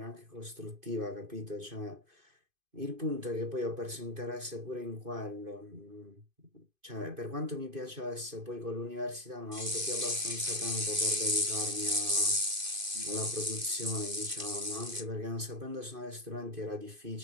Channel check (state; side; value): late; left; 2.5 ms